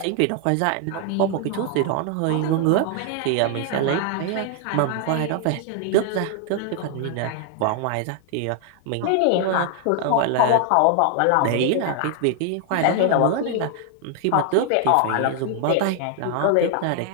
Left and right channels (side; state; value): both; different; correlation 0.00